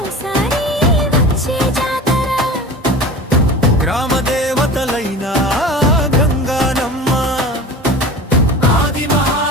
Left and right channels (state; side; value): normal; both; correlation 0.35